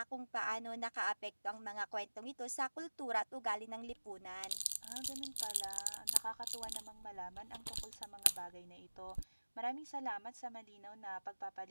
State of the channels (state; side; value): inverted; both; correlation -1.00